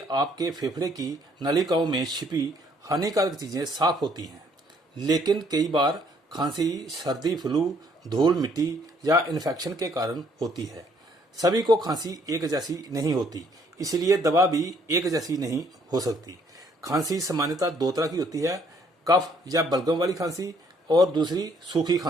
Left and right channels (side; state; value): both; normal; correlation 0.65